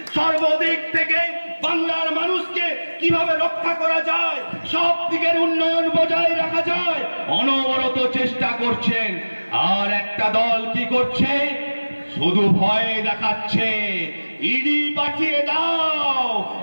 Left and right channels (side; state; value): both; inverted; correlation -1.00